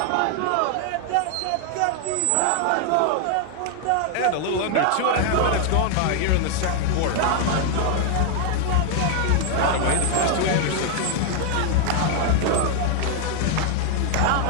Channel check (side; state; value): both; different; correlation 0.00